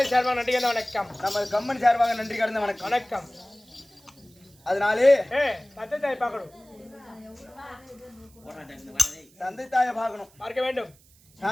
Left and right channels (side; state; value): right; noise; hiss, 29 dB below the sound